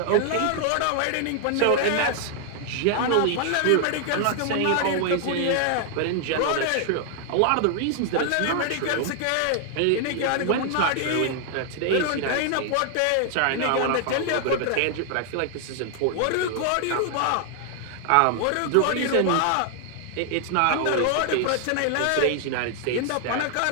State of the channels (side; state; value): both; different; correlation 0.00